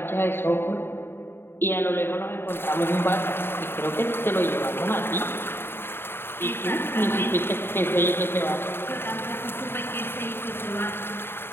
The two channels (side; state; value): right; late; 0.11 ms